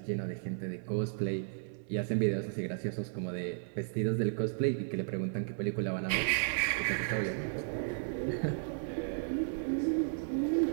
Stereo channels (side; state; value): left; silent; 55 dB below the other